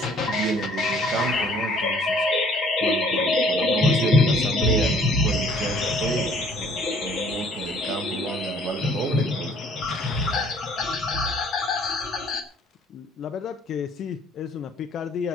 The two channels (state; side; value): normal; both; correlation 0.58